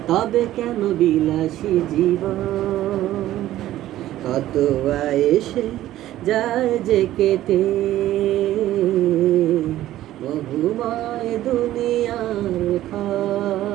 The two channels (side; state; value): left; quieter; 14.0 dB